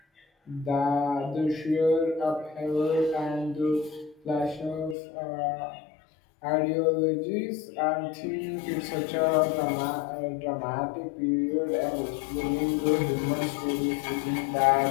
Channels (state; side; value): drops out; right; at 5.0 s